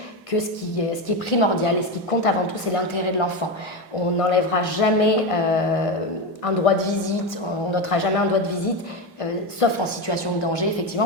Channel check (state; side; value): normal; both; correlation 0.15